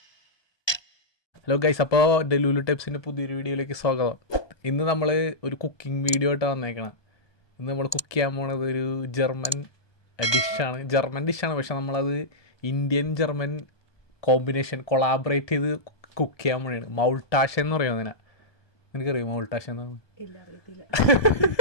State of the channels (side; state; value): right; late; 1.2 ms